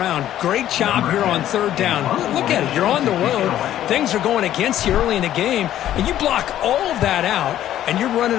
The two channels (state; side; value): quieter; right; 12.1 dB